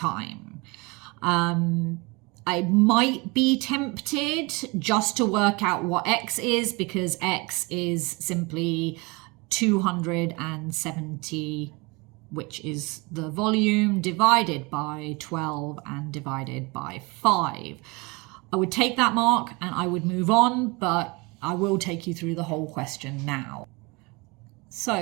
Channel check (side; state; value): left; quieter; 26.7 dB